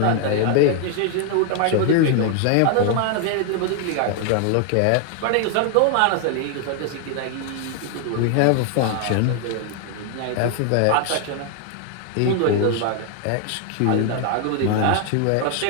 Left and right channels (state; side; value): different; both; correlation 0.00